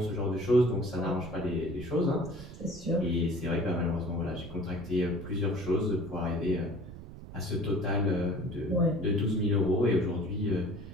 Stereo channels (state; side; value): noise; right; rumble, 14 dB below the sound